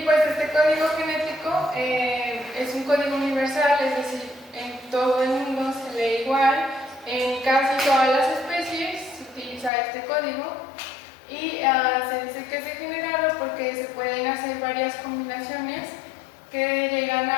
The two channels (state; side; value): drops out; right; at 9.7 s